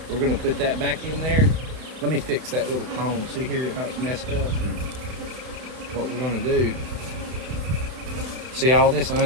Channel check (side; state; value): left; late; 31 ms